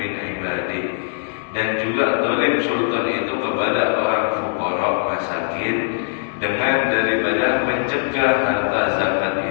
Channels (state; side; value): silent; right; digital silence